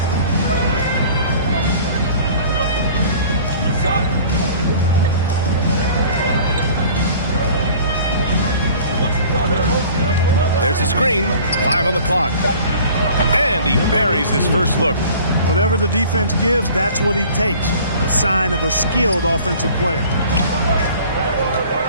There's a screen. 5 on the clock. And he buries his first look. Whatever the defense gives, that's what he takes. A sign of a skilled offensive player.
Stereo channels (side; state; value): both; inverted; correlation -0.47